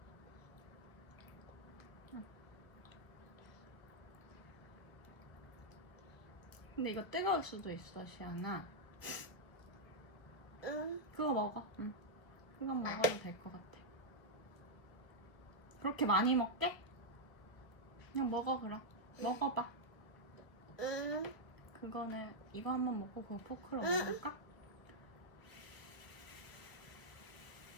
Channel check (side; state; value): right; late; 1.2 ms